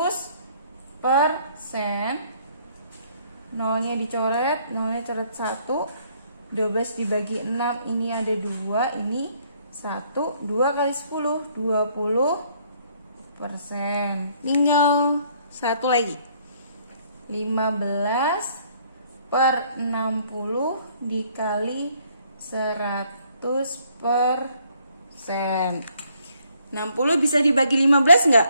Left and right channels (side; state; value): both; inverted; correlation -0.65